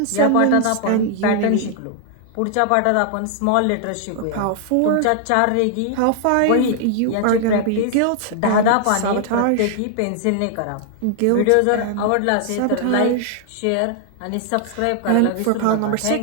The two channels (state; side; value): different; both; correlation 0.00